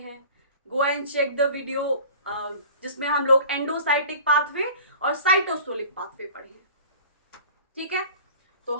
Go and check the video जिसमें हम लोग एंडोसाइटिक पाथवे और साइटोसोलिक पाथवे पढ़े हैं। ठीक है, तो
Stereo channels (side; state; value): both; inverted; correlation -0.43